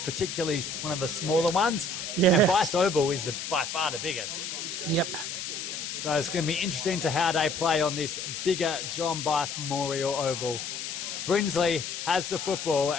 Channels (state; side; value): noise; left; hiss, 6 dB below the sound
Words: one of the smaller ones. Yeah. And Bice Oval is by far the biggest. Yep. So it's going to be interesting to how they play on this bigger John Bice Memorial Oval. Brinsley has the football